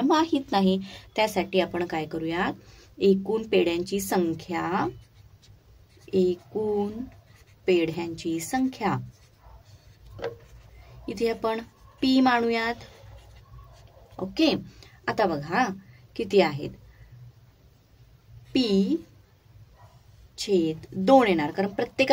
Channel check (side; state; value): both; identical; correlation 1.00